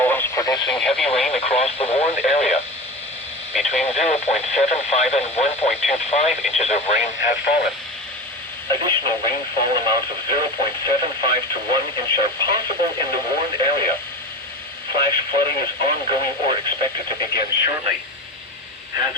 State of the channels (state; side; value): normal; both; correlation 0.28